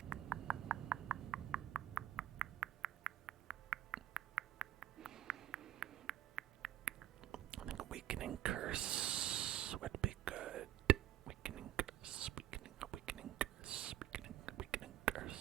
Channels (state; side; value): quieter; left; 12.6 dB